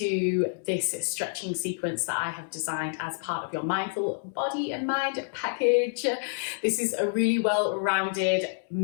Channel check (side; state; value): right; silent; 59 dB below the other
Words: this stretching sequence that I have designed as part of your Mindful Body and Mind package. This is a really well-rounded